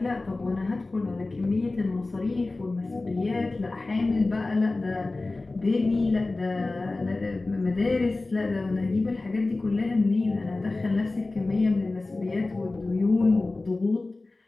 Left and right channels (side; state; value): right; quieter; 3.2 dB